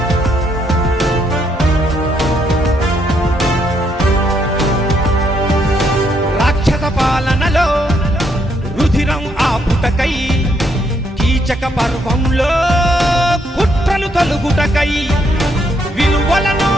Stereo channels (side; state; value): both; normal; correlation 0.74